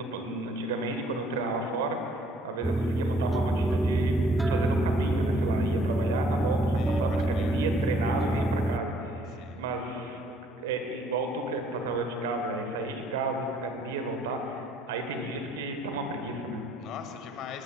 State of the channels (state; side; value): normal; both; correlation 0.62